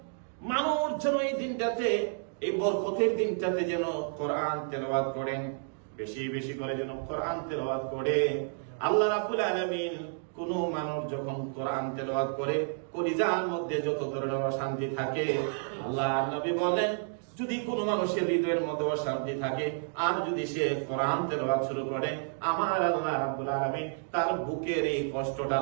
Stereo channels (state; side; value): silent; left; digital silence